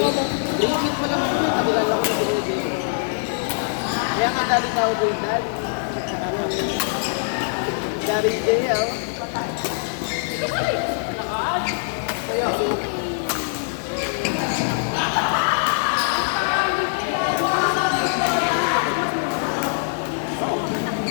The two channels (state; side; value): silent; right; digital silence